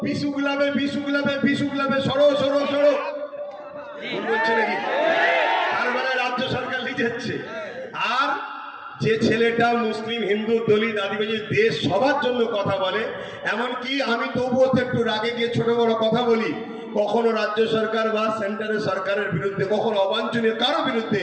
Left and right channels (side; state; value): both; identical; correlation 1.00